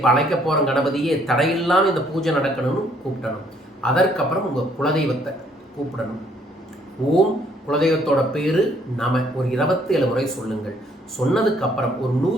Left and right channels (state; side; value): normal; both; correlation 0.65